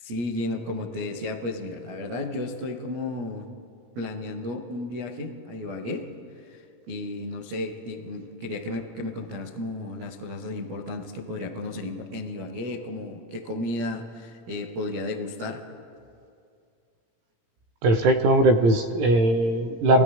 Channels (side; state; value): left; late; 17 ms